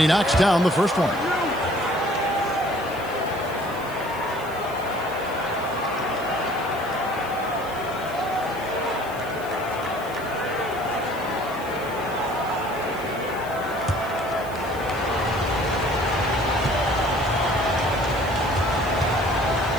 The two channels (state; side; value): noise; left; hiss, 19 dB below the sound